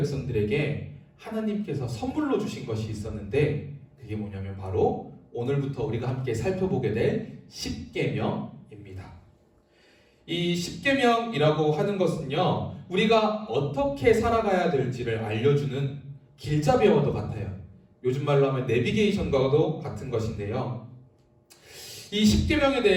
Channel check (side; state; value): both; identical; correlation 1.00